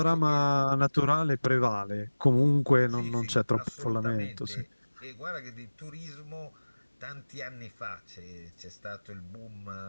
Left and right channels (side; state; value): both; inverted; correlation -1.00